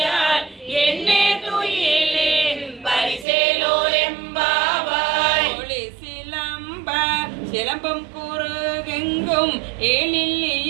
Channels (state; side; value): drops out; left; at 3.2 s